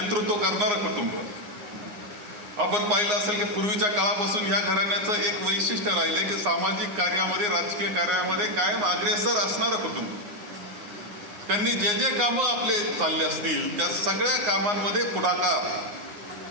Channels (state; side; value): late; left; 9.6 ms